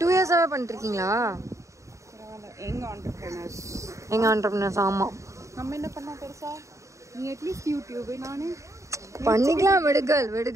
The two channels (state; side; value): late; left; 0.15 ms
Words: 2 இயர்ஸாவே பண்ணிட்டு இருக்கீங்களா? எங்க ஆண்டர்பிரினர்ஸ். எங்க ஆண்டர்பிரினர்ஸ். ஆமா. நம்ம என்ன பண்ணா பெருசா? நீ அட்லீஸ்ட் யூடியூப் நானு பண்ணிக்கலாம்.